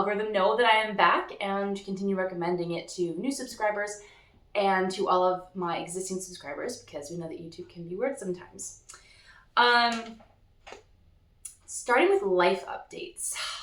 know that I am back and continue recommending it to new subscribers and to all of my existing subscribers, because we know that YouTube can be weird sometimes. Starting with life updates.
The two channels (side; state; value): both; identical; correlation 1.00